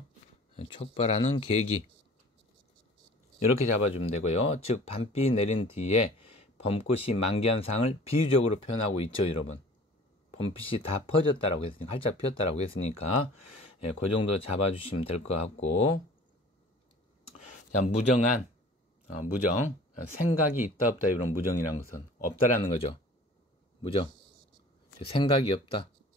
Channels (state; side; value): normal; both; correlation 0.46